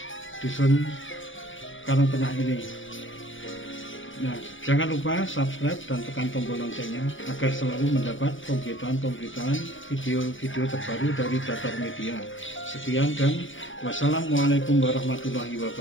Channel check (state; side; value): late; right; 0.57 ms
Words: dusun Karangtengah ini. Nah, jangan lupa subscribe dan tekan tombol loncengnya agar selalu mendapat pemberitaan-pemberitaan video-video terbaru dari Datar Media. Sekian dan wassalamualaikum warahmatullahi